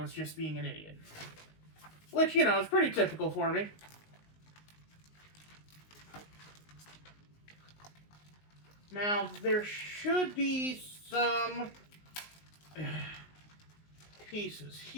just being an idiot. Which, you know, is pretty typical for me. Now, there should be some pieces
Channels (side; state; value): right; late; 19 ms